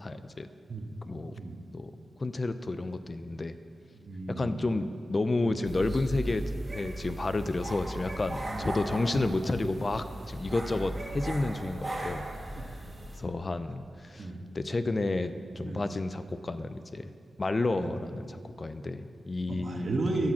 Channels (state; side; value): normal; both; correlation 0.95